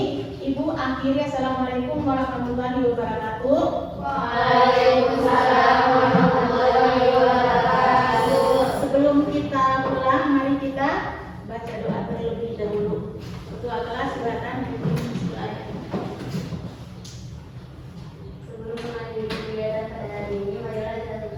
Ibu akhiri, assalamualaikum warahmatullahi wabarakatuh. Waalaikumsalam warahmatullahi wabarakatuh. Sebelum kita pulang, mari kita baca doa terlebih dahulu. Doa kelas silakan. Sebelum mengakhiri kegiatan pada hari ini, marilah kita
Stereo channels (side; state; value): both; identical; correlation 1.00